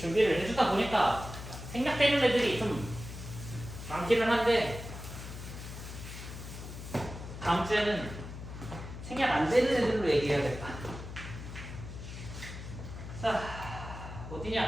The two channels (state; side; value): noise; left; hum, 10 dB below the sound